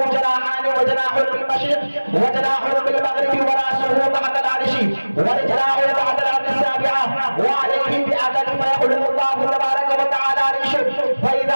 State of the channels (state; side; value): inverted; both; correlation -1.00